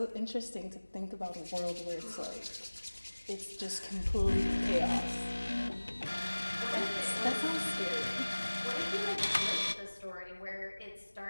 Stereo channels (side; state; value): both; inverted; correlation -1.00